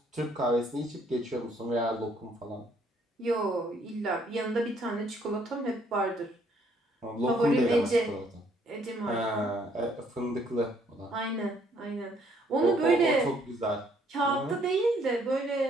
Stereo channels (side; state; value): both; normal; correlation 0.66